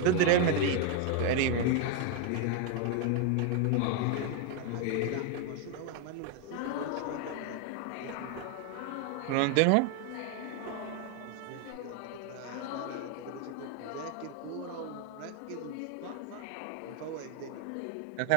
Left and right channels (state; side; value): different; both; correlation 0.01